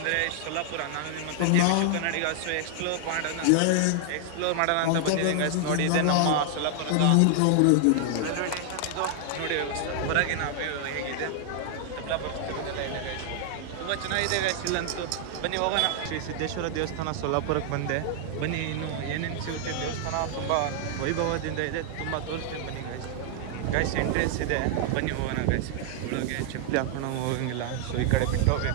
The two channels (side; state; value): both; different; correlation 0.00